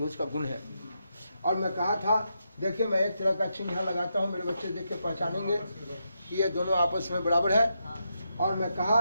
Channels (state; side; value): inverted; both; correlation -0.83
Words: का गुण है। और मैं कहा था, देखिए मैं एक तरह का चिन्ह यहाँ लगाता हूँ, मेरे बच्चे देख के पहचानेंगे कि ये दोनों आपस में बराबर है। और मैं कहा